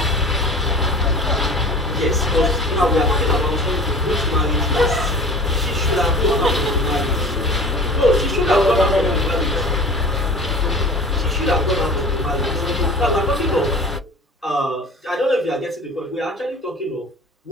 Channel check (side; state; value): both; normal; correlation 0.41